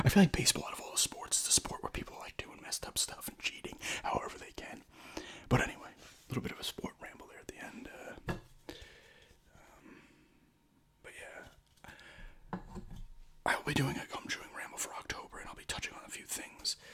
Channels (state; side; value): identical; both; correlation 1.00